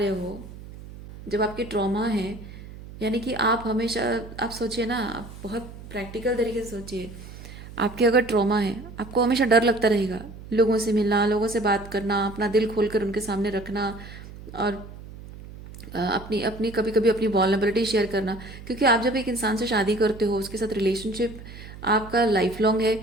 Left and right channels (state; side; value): noise; right; hum, 15 dB below the sound